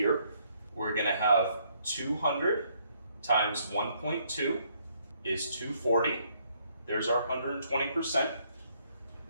We're gonna have 200 times 1.2 is 240. There's our 120%.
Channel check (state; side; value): inverted; both; correlation -0.69